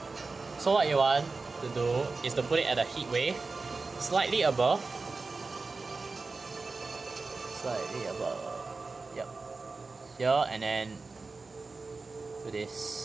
So what you want to do is to put it at a heat wave slightly above. Yep. Here, and then do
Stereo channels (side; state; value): left; quieter; 3.9 dB